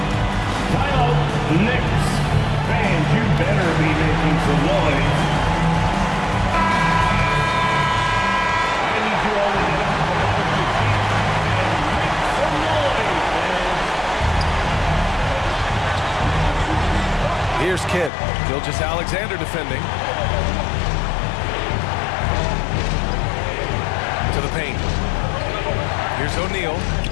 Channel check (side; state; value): right; drops out; at 18.1 s